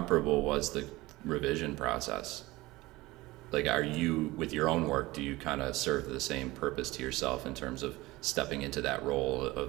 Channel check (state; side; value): quieter; left; 19.9 dB